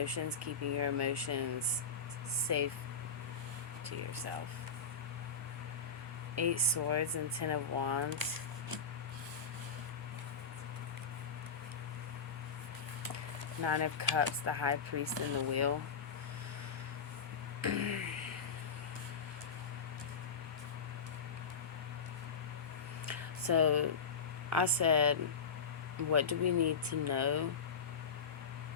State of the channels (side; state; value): right; quieter; 5.2 dB